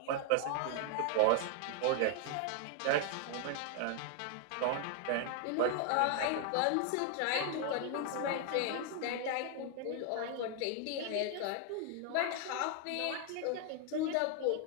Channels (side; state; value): both; different; correlation 0.00